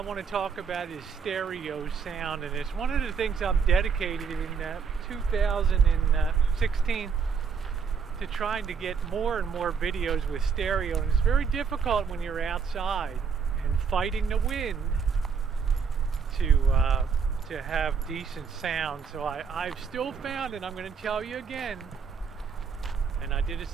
to talk about is stereo sound, and it's one of the things I'm dedicated in 2016 to trying to get more and more videos with stereo. And it's very difficult when you're outside and fighting the wind to have decent sound. So I've still found, and I'm going to tell you again, and I did a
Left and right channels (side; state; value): left; quieter; 6.1 dB